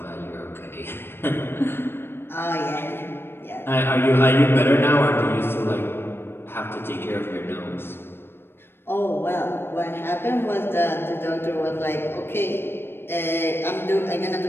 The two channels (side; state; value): right; late; 0.11 ms